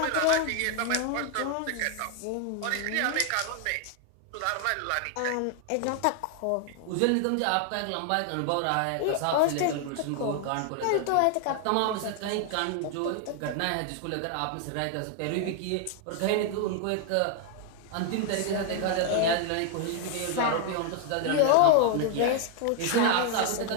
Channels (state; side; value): different; both; correlation 0.00